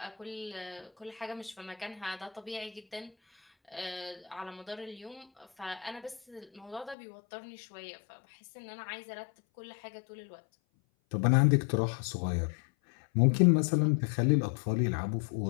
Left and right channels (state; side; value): drops out; right; at 7.0 s